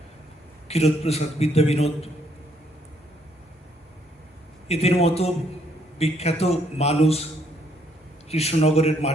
ক্ষীরোদপ্রসাদ বিদ্যাবিনোদ, এদের মতো বিখ্যাত মানুষ কৃষ্ণনগরের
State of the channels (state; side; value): normal; both; correlation 0.70